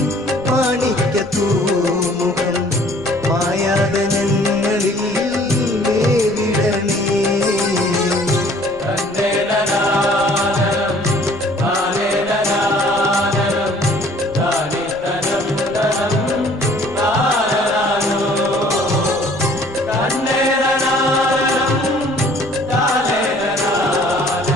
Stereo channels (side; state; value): right; noise; rumble, 23 dB below the sound